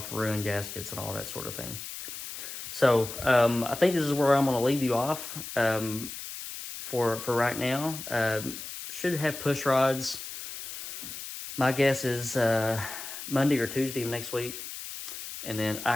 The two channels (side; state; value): left; noise; hiss, 9 dB below the sound